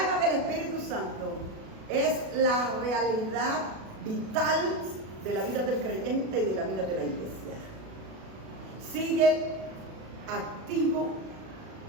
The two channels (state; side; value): late; left; 37 ms